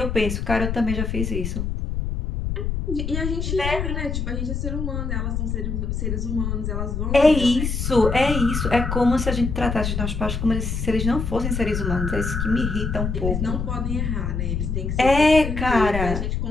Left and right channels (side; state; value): left; noise; rumble, 2 dB below the sound